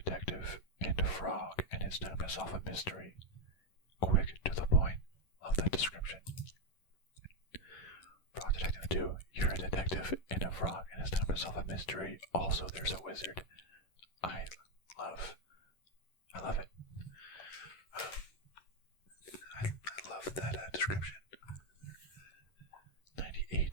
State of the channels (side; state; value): right; late; 11 ms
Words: and a frog, and it's time to solve a mystery. Quick, to the point. Love that description. Frog Detective 2. You're a detective and a frog, and it's time to solve a mystery. Also, there's a wizard. I love it. I love that description.